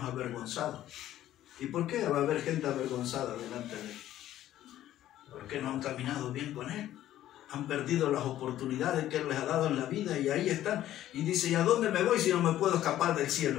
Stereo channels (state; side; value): quieter; right; 13.0 dB